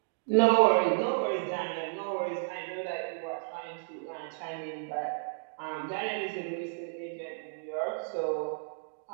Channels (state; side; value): silent; left; digital silence